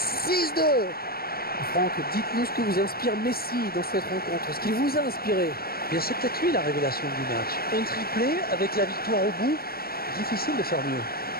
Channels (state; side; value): late; right; 0.44 ms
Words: Franck, dites-nous ce que vous inspire Messi dans cette rencontre, ce qu'il vous a inspiré. Bien, c'est peut-être lui la révélation du match. Un triplé avec la victoire au bout, difficile de faire mieux.